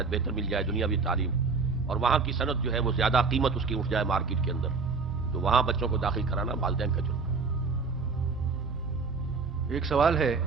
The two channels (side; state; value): left; quieter; 4.6 dB